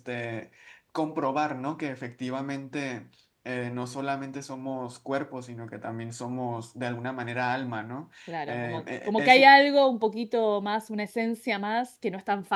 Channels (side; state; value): both; identical; correlation 1.00